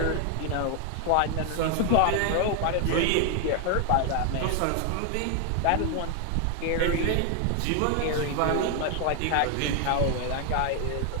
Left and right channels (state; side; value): different; both; correlation 0.00